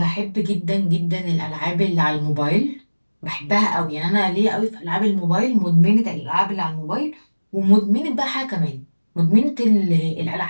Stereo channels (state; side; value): inverted; both; correlation -1.00